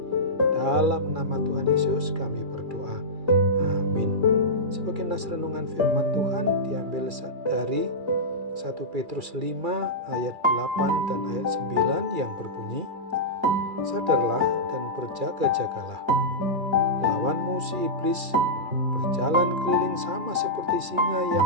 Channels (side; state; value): left; late; 2.3 ms